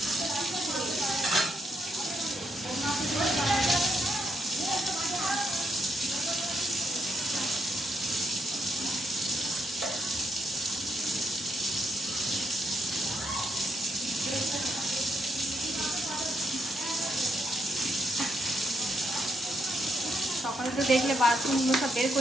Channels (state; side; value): normal; both; correlation 0.78